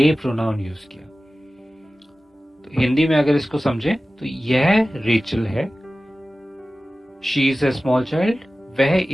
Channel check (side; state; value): both; normal; correlation 0.96